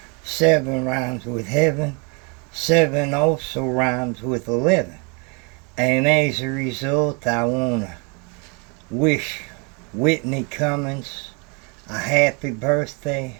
7 rhymes with heaven, 7 also rhymes with 11, and as a result I want to wish Whitney Cummings a happy birthday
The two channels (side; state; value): left; quieter; 33.1 dB